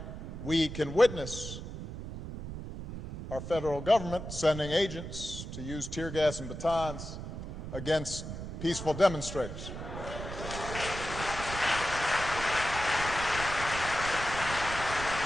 we can witness our federal government sending agents to use tear gas and batons against peaceful demonstrators.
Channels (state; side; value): noise; right; rumble, 8 dB below the sound